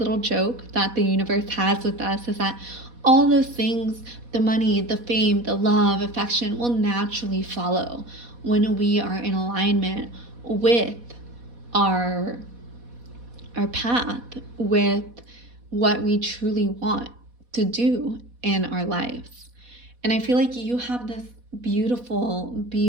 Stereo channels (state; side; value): late; left; 4.1 ms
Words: joke that the universe has with us, is that all those things, the money, the fame, the love, affection, will naturally follow when we are in alignment with our path, with what we truly want to do in our lives. And I feel like you have this beautiful,